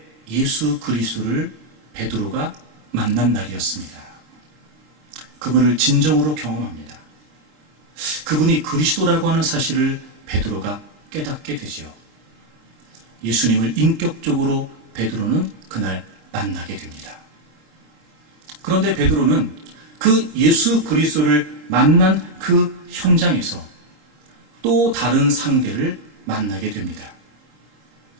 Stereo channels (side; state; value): left; late; 30 ms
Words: 예수 그리스도를 베드로가 만난 날이었습니다. 그분을 진정으로 경험합니다. 그분이 그리스도라고 하는 사실을 베드로가 깨닫게 되죠. 예수님을 인격적으로 베드로는 그날 만나게 됩니다. 그런데 베드로는 그 예수 그리스도를 만난 그 현장에서 또 다른 상대를 만나게 됩니다.